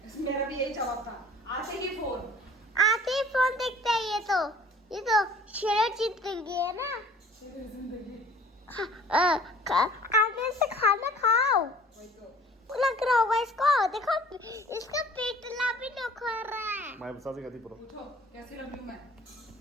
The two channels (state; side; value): normal; both; correlation 0.51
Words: मेरा भी यही जवाब था, आते ही फोन देखते हैं। ये तो शेर जिंदगी है ना। आगे से खाना खाओ, लग रहा होगा इसको। देखो इसका पेटला भी निखर रहा है। उठो, कैसी लग रही हूँ मैं?